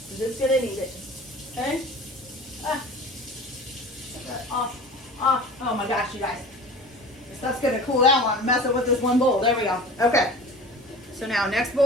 I'm just gonna need it. Okay? Ah. Off. Off. Oh my gosh, you guys. This stuff's gonna cool down while I'm messing with this one bowl. There we go. Okay. So now next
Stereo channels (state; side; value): normal; both; correlation 0.38